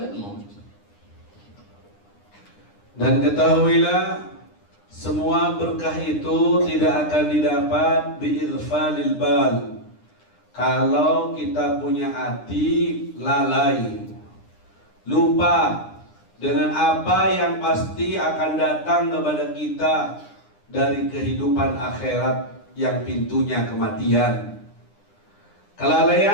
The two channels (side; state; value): right; late; 9.8 ms